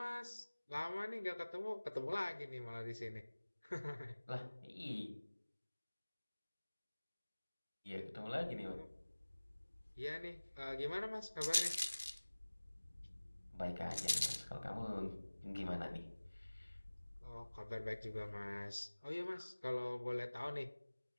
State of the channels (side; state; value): both; inverted; correlation -1.00